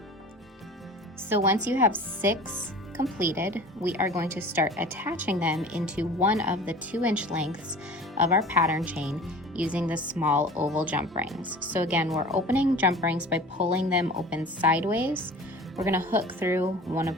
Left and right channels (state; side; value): normal; both; correlation 0.40